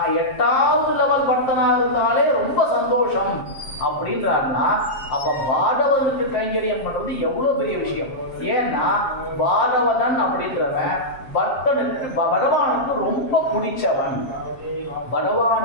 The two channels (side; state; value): right; late; 7.5 ms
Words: 8வது லெவல் பக்தனா இருந்தாலே ரொம்ப சந்தோஷம் அப்படின்றாருன்னா, அப்ப பாகவதனுக்கு கைங்கரியம் பண்றது எவ்வளவு பெரிய விஷயம். ஏன்னா பாகவதன் அப்படின்றவன் பக்தனுக்கு பகவானுக்கு ரொம்ப பிடிச்சவன்.